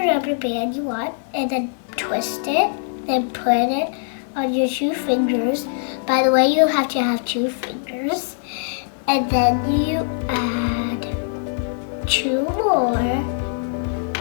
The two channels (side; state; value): right; silent; 64 dB below the other